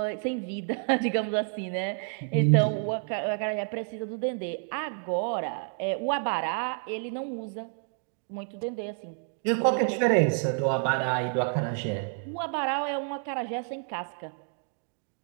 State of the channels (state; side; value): silent; left; 58 dB below the other